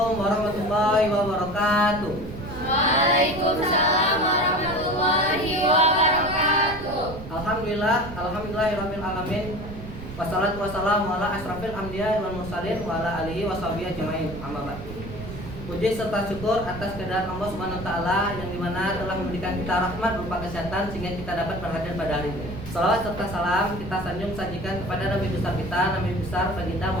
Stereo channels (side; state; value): right; noise; rumble, 12 dB below the sound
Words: warahmatullahi wabarakatuh. Waalaikumsalam warahmatullahi wabarakatuh. Alhamdulillahirabbil alamin. Wassalatu wassalamu ala asrafil anbiya'i wal mursalin wa ala alihi washabihi ajmain. Amma ba'd. Puji serta syukur atas kehadiran Allah Subhanahu wa taala yang dimana telah memberikan kita rahmat berupa kesehatan sehingga kita dapat berhadir pada hari ini. Salawat serta salam kita sanjung sajikan kepada Nabi besar kita, Nabi besar baginda